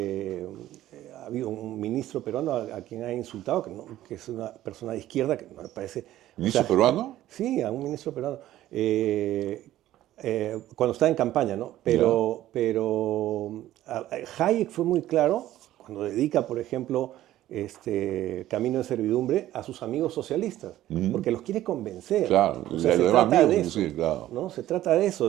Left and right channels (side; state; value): left; quieter; 13.9 dB